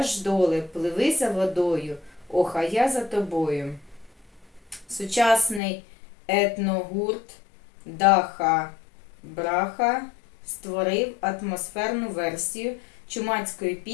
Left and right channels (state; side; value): drops out; right; at 5.6 s